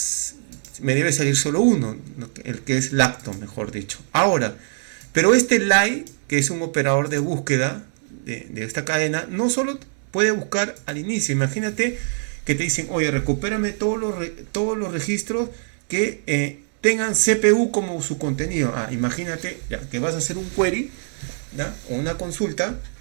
me debe salir solo uno, el que es lacto, mejor dicho. Ahora, pero este lie, que es un operador de búsqueda de esta cadena, no solo puede buscar al inicio. Imagínate que te dicen, oye, recupérame todos los registros que tengan CPU como su contenido. Imagínate ya, que vas a hacer un query, ¿no? O una consulta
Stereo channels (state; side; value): silent; left; 62 dB below the other